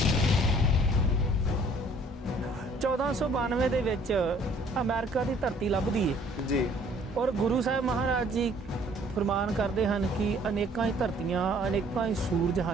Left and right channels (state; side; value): normal; both; correlation 0.58